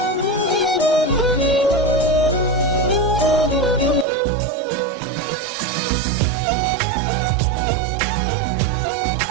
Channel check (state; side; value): drops out; left; at 4.0 s